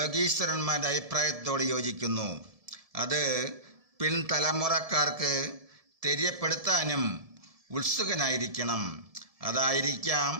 അഭിപ്രായത്തോട് യോജിക്കുന്നു. അത് പിൻതലമുറക്കാർക്ക് തെര്യപ്പെടുത്താനും ഉത്സുകനായിരിക്കണം. അതായിരിക്കാം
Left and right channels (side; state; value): left; late; 1.7 ms